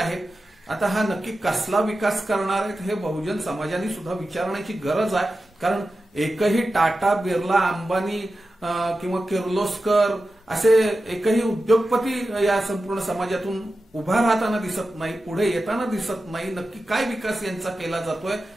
आता हा नक्की कसला विकास करणार आहेत हे बहुजन समाजाने सुद्धा विचारण्याची गरज आहे. कारण एकही टाटा, बिर्ला, अंबानी किंवा किर्लोस्कर असे एकही उद्योगपती या संपूर्ण समाजातून उभा राहताना दिसत नाही, पुढे येताना दिसत नाही. नक्की काय विकास यांचा केला जातोय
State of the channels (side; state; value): both; normal; correlation 0.92